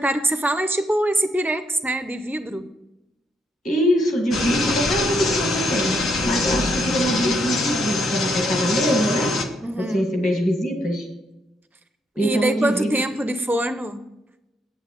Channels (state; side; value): normal; both; correlation 0.75